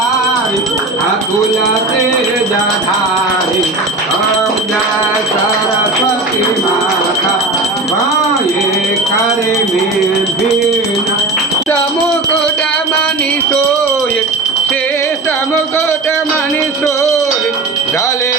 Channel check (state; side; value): quieter; left; 3.1 dB